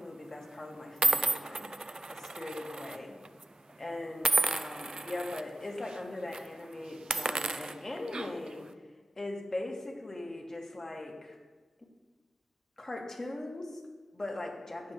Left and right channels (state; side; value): normal; both; correlation 0.89